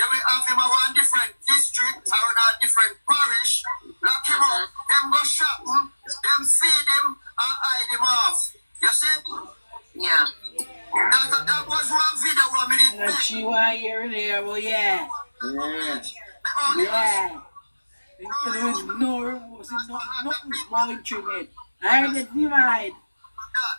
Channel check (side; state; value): both; inverted; correlation -1.00